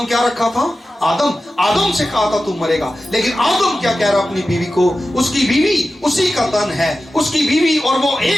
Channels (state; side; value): normal; both; correlation 0.93